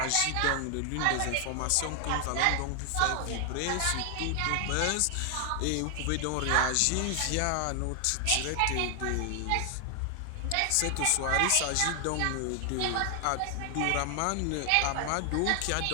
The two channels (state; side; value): different; both; correlation 0.00